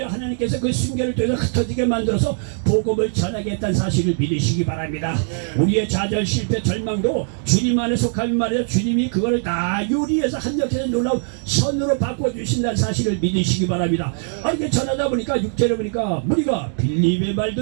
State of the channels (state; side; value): silent; left; digital silence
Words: 하나님께서 그 순결을 통해서 흩어지게 만들어서 복음을 전하겠다는 사실을 믿으시기 바랍니다. 우리의 좌절, 실패, 절망도 주님 안에 속하면 말이야. 주님이 그걸 다 요리해서 한역해서 놀라운 선으로 바꿔주신다는 사실을 믿으시기 바랍니다. 이렇게 전하다 보니까 6절에 보니까 우리가 빌립의